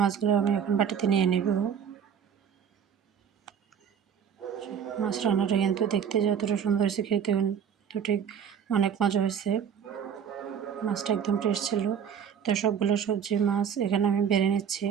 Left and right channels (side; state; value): left; quieter; 7.9 dB